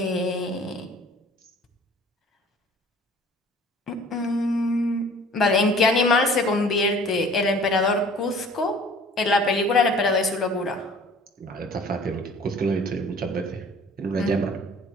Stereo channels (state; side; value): normal; both; correlation 0.50